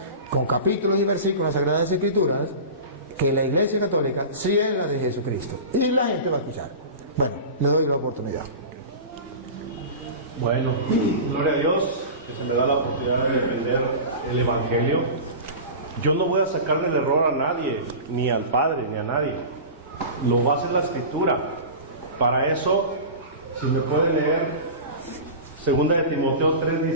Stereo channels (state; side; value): inverted; both; correlation -0.31